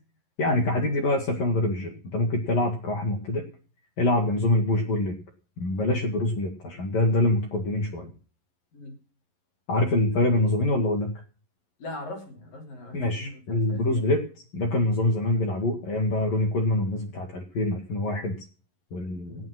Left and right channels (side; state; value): right; late; 11 ms